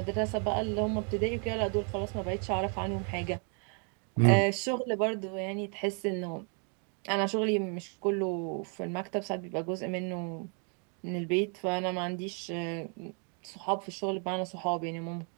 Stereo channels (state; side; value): quieter; left; 39.5 dB